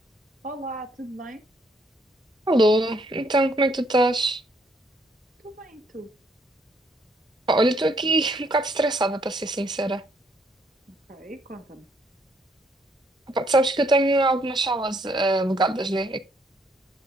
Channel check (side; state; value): both; normal; correlation 0.69